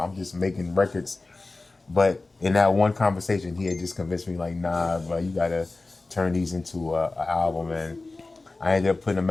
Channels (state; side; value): quieter; right; 3.3 dB